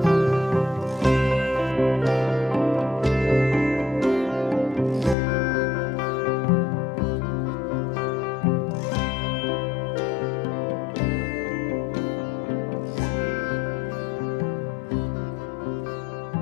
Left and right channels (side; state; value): right; drops out; at 5.2 s